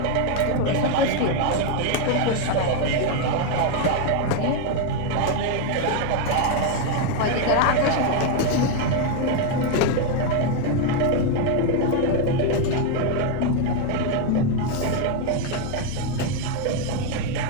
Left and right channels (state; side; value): different; both; correlation 0.01